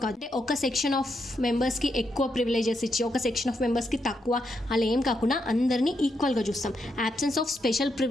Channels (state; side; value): normal; both; correlation 0.81